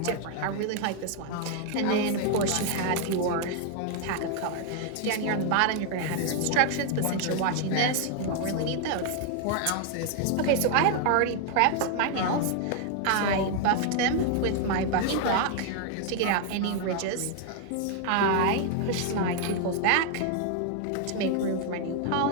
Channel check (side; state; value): both; different; correlation 0.00